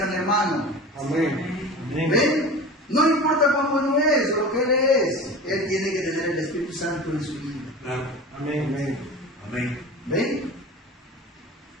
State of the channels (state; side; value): normal; both; correlation 0.35